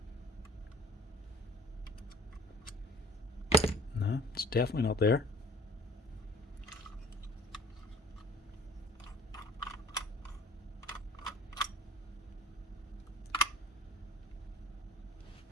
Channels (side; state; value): both; normal; correlation 0.49